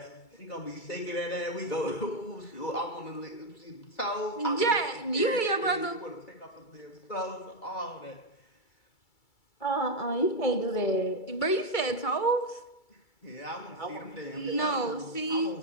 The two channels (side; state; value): right; late; 2.3 ms